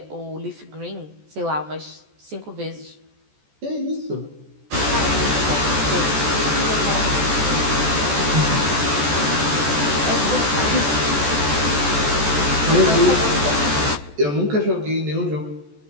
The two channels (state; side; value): late; left; 14 ms